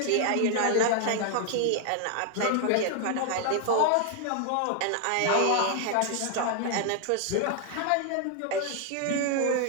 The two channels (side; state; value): both; different; correlation 0.00